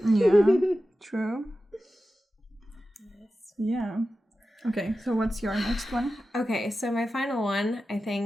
Yeah, true. Yeah. Okay, so what's your next one? Okay, so my final one, I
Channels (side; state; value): both; normal; correlation 0.93